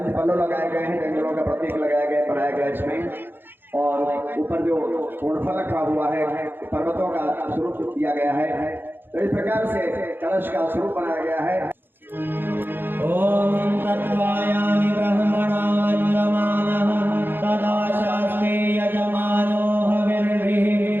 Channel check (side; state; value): left; late; 0.099 ms